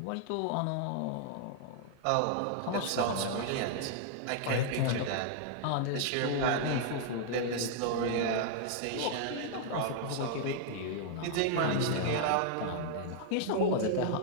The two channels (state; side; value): different; both; correlation -0.01